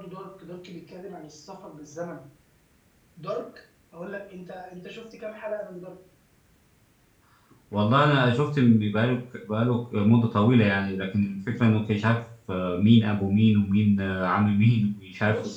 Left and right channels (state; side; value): identical; both; correlation 1.00